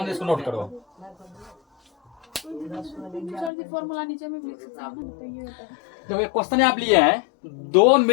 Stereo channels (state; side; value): drops out; right; at 3.5 s